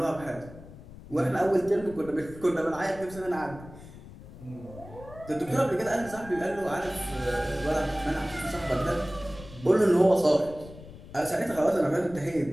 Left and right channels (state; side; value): noise; left; rumble, 17 dB below the sound